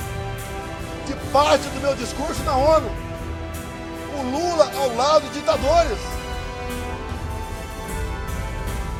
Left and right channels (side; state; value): both; identical; correlation 1.00